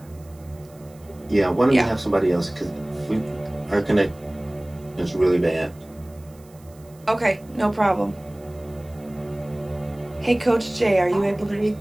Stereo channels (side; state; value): right; noise; hiss, 28 dB below the sound